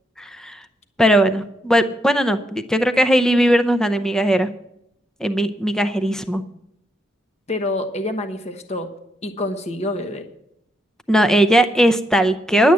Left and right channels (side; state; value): both; normal; correlation 0.79